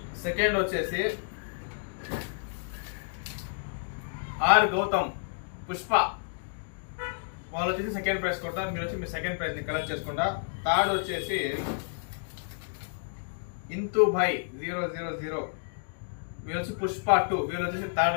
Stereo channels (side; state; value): right; silent; digital silence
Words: సెకండ్ వచ్చేసి ఆర్ గౌతమ్ పుష్ప, వాళ్ళు వచ్చేసి సెకండ్ ప్రైజ్ కొట్టారు. మీరు వచ్చి మీ సెకండ్ ప్రైజ్ ని కలెక్ట్ చేసుకుంటా. థర్డ్ వచ్చేసి ఇంతు భాయ్ 000, మీరు వచ్చి పుష్ప 2, వీళ్ళు వచ్చేసి